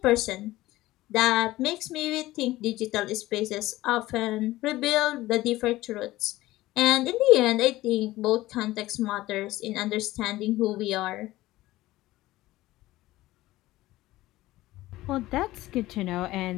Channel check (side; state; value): right; quieter; 17.1 dB